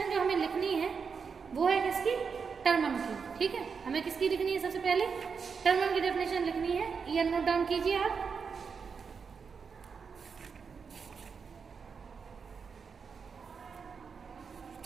जो हमें लिखनी है वो है किसकी, टर्मन की। ठीक है, हमें किसकी लिखनी है, सबसे पहले टर्मन की डेफिनेशन लिखनी है। ये नोट डाउन कीजिए आप।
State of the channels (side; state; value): left; quieter; 5.8 dB